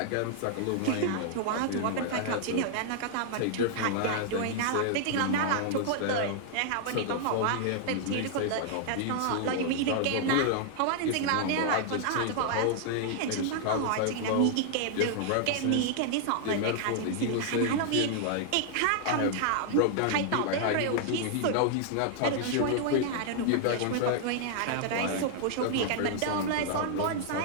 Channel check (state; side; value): different; both; correlation 0.00